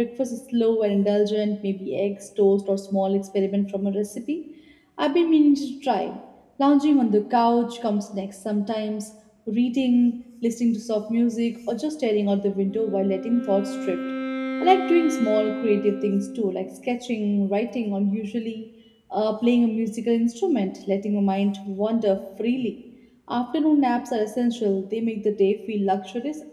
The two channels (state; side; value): identical; both; correlation 1.00